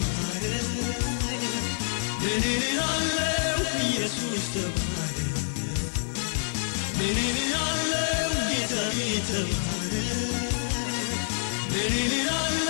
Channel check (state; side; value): silent; right; digital silence